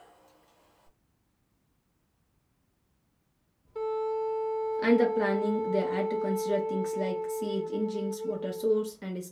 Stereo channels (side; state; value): both; identical; correlation 1.00